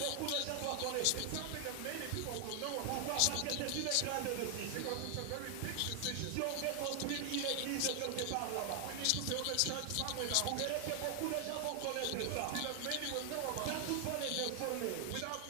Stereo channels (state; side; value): different; both; correlation 0.00